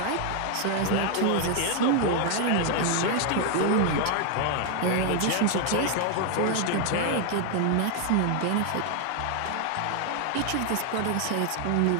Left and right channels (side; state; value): both; different; correlation 0.00